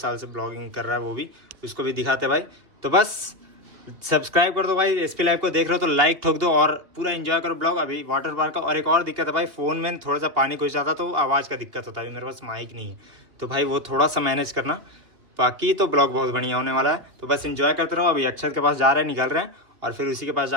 से ब्लॉगिंग कर रहा है वो भी, उसको भी दिखाते भाई। तो बस सब्सक्राइब कर दो भाई, एसपी लाइव को देख रहे हो तो लाइक ठोक दो और पूरा एंजॉय करो ब्लॉग। अभी वाटर पार्क का और एक और दिक्कत है भाई, फोन में थोड़ा सा पानी घुस जाता तो आवाज़ का दिक्कत होता है, मेरे पास माइक नहीं है, तो भाई वो थोड़ा सा मैनेज करना, बाकी तो ब्लॉग बहुत बढ़िया होने वाला है। तो बस एंजॉय करते रहो। अभी अक्षत के पास जा रहे हैं, निकल रहे हैं और फिर उसी के पास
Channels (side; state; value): left; late; 2.8 ms